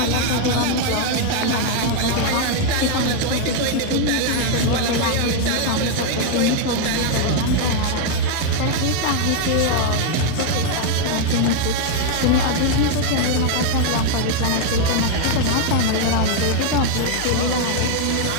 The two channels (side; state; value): both; different; correlation 0.00